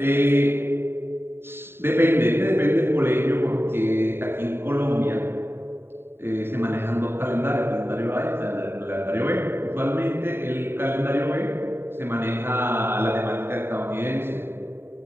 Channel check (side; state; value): left; late; 0.11 ms